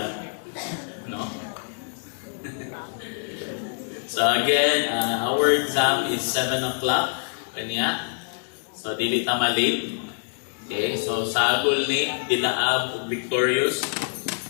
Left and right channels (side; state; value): right; silent; digital silence